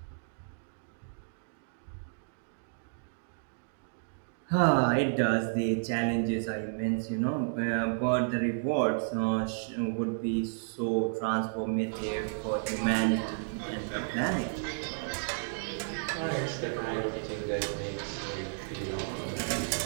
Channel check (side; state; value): left; silent; digital silence